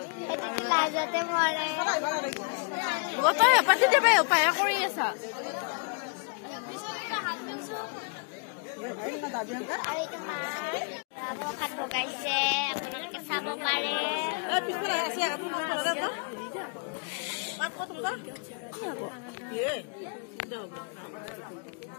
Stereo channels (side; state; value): right; quieter; 39.1 dB